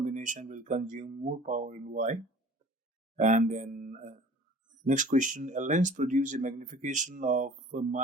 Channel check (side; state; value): both; normal; correlation 0.46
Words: will consume more power and why? And then next question, a lens produces a magnification of